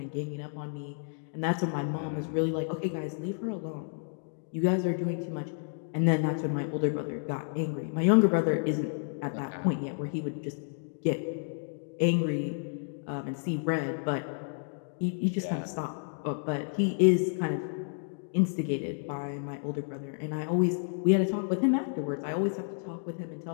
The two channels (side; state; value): right; silent; digital silence